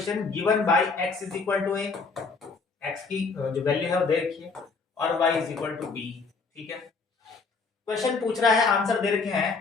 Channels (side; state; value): right; quieter; 4.5 dB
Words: given by x is equal to a, x की जो वैल्यू है वो दे रखी है, और y is equal to b। ठीक है क्वेश्चन पूछ रहा है, आंसर दे रखे